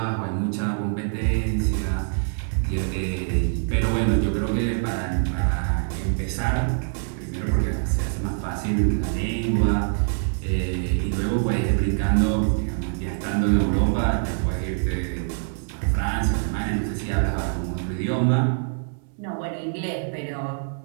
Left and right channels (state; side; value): silent; left; digital silence